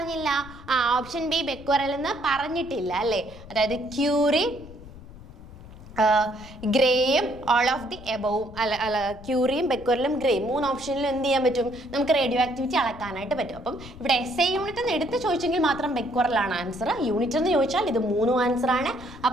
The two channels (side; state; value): left; noise; rumble, 17 dB below the sound